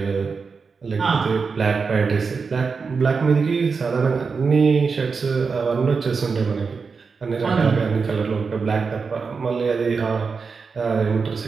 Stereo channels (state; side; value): quieter; left; 5.1 dB